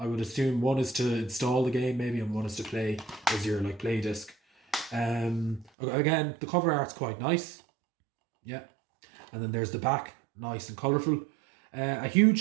would assume one is to install the game maybe, and one is to play as your like play disc. Again, the cover art's quite nice. Yeah. And then there's the back, nice and colourful. A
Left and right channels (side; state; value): left; drops out; at 5.7 s